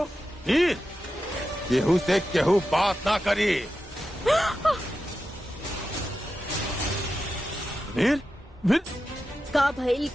वीर, केहू से केहू बात ना करी। वीर वीर, का भइल?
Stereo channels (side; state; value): both; normal; correlation 0.91